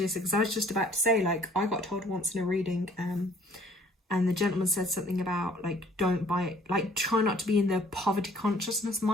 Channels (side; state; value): both; normal; correlation 0.58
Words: because I was just about to say, like, I got told once in a reading, and the gentleman said something about, like, don't buy, like, try not to be in the poverty consciousness